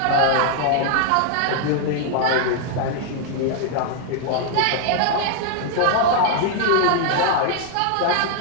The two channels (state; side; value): different; both; correlation 0.00